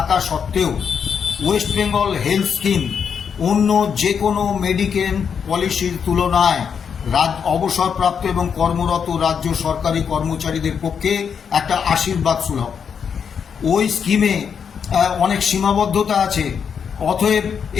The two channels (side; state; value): right; quieter; 7.0 dB